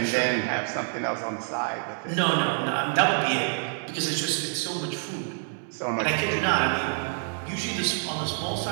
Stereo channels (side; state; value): left; silent; 59 dB below the other